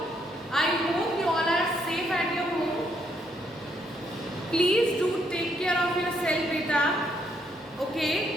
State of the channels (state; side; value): normal; both; correlation 0.73